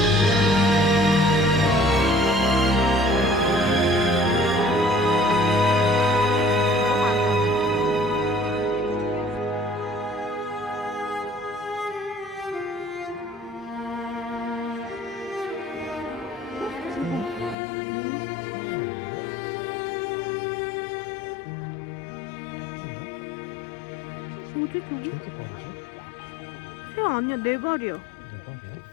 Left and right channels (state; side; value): drops out; right; at 17.6 s